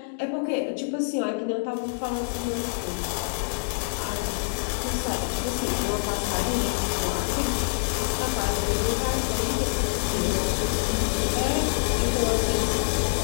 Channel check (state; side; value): silent; right; digital silence